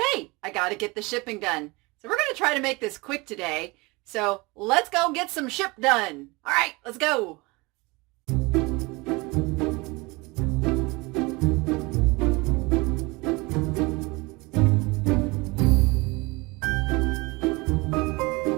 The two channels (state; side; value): quieter; left; 24.9 dB